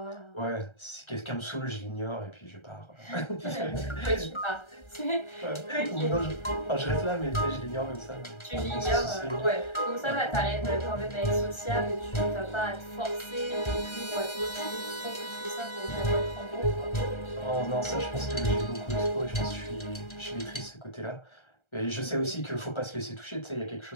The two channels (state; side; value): late; right; 1.3 ms